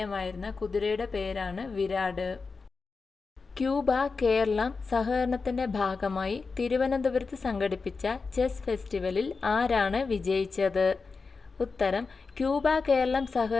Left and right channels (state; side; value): quieter; right; 4.5 dB